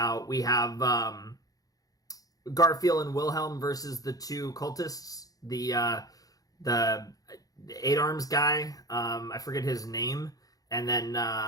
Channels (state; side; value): late; right; 0.18 ms